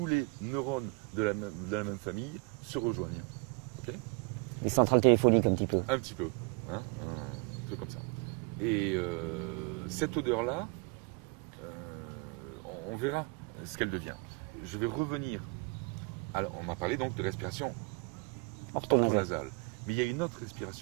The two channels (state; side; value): quieter; left; 29.6 dB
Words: les neurones de la même famille se rejoignent. Okay, les centrales téléphoniques un petit peu. Un petit peu, hein, un truc comme ça. Et cette odeur-là, on verra ce qu'elle devient. Je vais revenir. Alors, on m'a parlé donc de respiration orthonasale. Mais il y a une autre